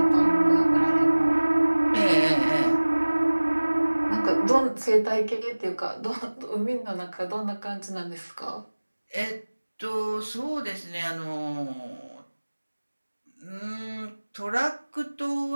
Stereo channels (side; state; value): both; inverted; correlation -1.00